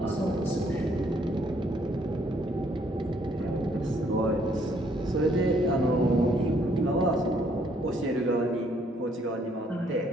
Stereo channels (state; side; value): normal; both; correlation 0.67